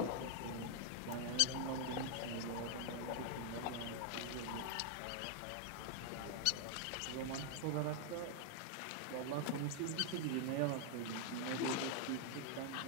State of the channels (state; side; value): different; both; correlation 0.00